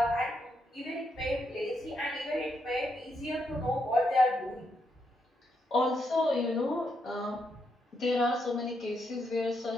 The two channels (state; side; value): normal; both; correlation 0.80